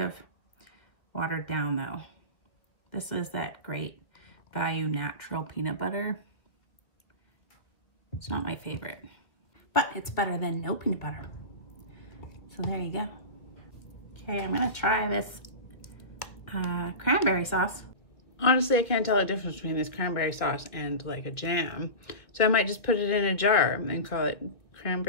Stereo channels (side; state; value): right; late; 1.9 ms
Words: watered down though. This is that Great Value natural peanut butter. It's not my favorite, but it's better than no peanut butter. So there you go. Okay, I'm gonna try this cranberry sauce. Honestly, I can't tell the difference between this cranberry sauce and like a jam. So I might just put it in a jar and call it